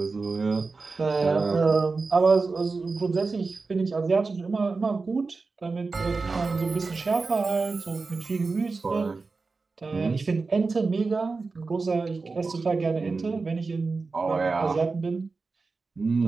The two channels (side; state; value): left; quieter; 4.1 dB